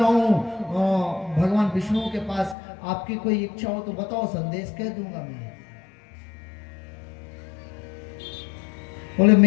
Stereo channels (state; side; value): drops out; right; at 2.6 s